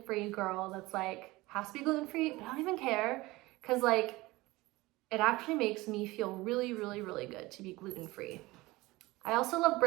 girl that's like has to be gluten-free, but I don't even care because like it actually makes me feel really, really, really good to be gluten-free. I also love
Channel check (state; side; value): quieter; left; 20.5 dB